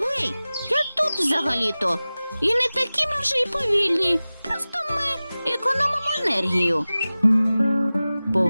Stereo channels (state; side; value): inverted; both; correlation -0.97